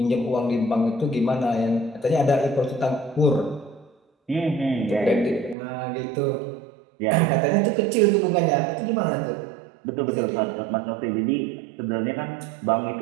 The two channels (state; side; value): drops out; left; at 5.6 s